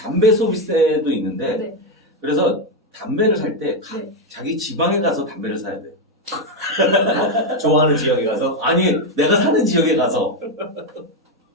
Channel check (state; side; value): normal; both; correlation 0.06